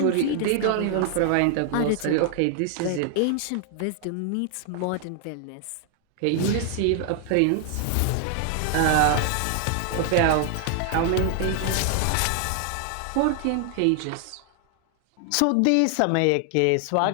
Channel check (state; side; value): different; both; correlation 0.00